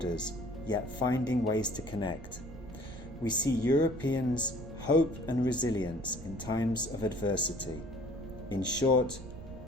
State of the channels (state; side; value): noise; right; rumble, 13 dB below the sound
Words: yet finding ways to connect. We see Europeans' hope and resilience in times of adversity. In short,